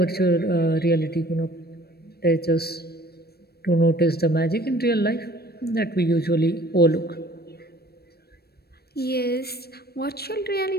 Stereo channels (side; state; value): right; late; 0.46 ms